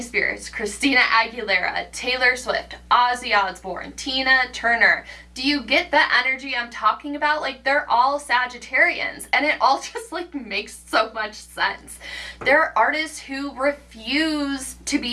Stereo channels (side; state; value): both; identical; correlation 1.00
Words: Spears, Christina Aguilera, Taylor Swift, Ozzy Osbourne, Tina Turner. Do you get the energy I'm talking about? Like, they're all Sagittarians, and it all just like makes so much sense. They're artists who refuse to